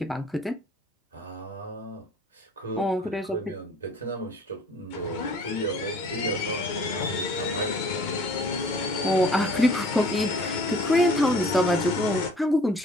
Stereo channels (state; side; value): normal; both; correlation 0.52